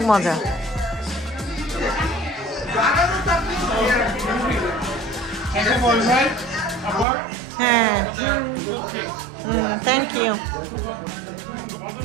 মজা এসে বলবেন আবার হ্যাঁ থ্যাংক ইউ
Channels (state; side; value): drops out; left; at 7.1 s